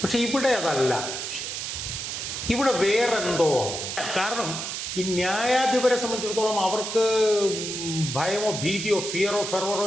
പക്ഷേ ഇവിടെ അതല്ല വിഷയം. ഇവിടെ വേറെന്തോ ആണ്. കാരണം ഈ ന്യായാധിപരെ സംബന്ധിച്ചിടത്തോളം അവർക്ക് ഭയമോ ഭീതിയോ ഫിയറോ ഫെർവറോ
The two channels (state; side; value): noise; right; hiss, 5 dB below the sound